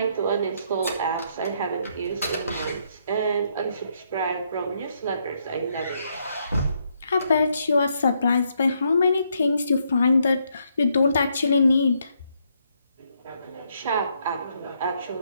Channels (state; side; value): inverted; both; correlation -0.75